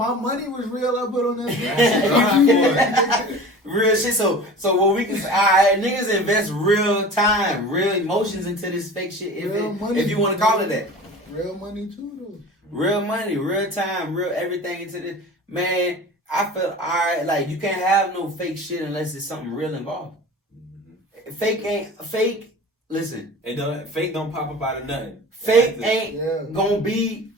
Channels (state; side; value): normal; both; correlation 0.38